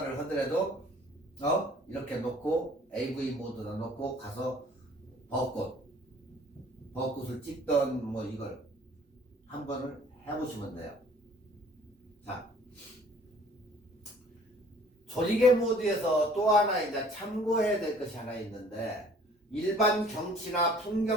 하더라도 이렇게 놓고 AV 모드로 놓고 가서 벚꽃을 찍던 뭐 이걸 한 번을 해보시면 돼요. 자, 조리개 모드에서 또 하나 이제 참고해야 될 것이 하나 있는데 일반 경치나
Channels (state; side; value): normal; both; correlation 0.53